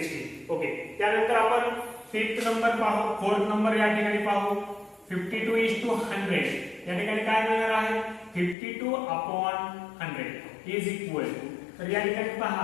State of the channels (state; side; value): drops out; right; at 8.6 s